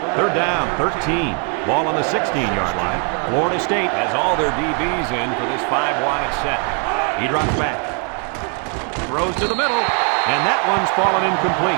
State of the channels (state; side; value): quieter; left; 39.5 dB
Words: 3rd down, 13. Ball on the 16-yard line. Florida State has all their DBs in for this 5-wide set. He drops back. Throws to the middle, and that one's fallen